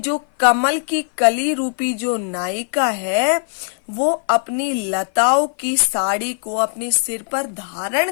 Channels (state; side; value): silent; right; 56 dB below the other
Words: कमल की कली रूपी जो नायिका है वो अपनी लताओं की साड़ी को अपने सिर पर धारण